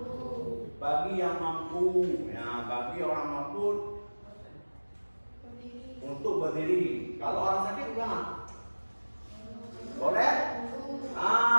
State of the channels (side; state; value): both; inverted; correlation -1.00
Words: Ya, bagi orang mampu untuk berdiri. Kalau orang sakit gimana? Boleh?